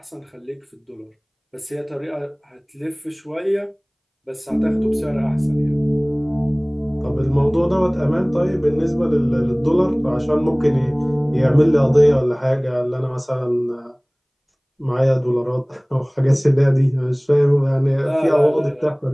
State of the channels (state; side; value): identical; both; correlation 1.00